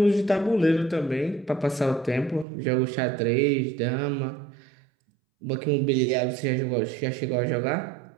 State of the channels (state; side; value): drops out; left; at 2.5 s